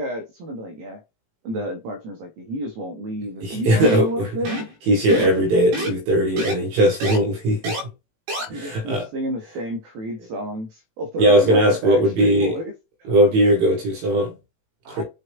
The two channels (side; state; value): left; late; 18 ms